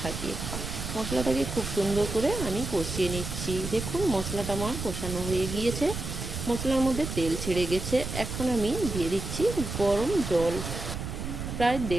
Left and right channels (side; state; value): right; noise; rumble, 6 dB below the sound